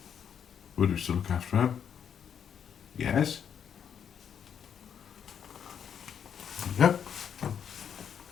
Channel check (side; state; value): right; quieter; 8.1 dB